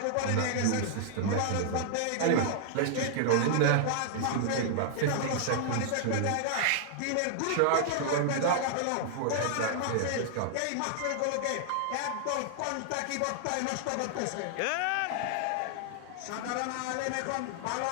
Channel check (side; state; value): both; different; correlation -0.01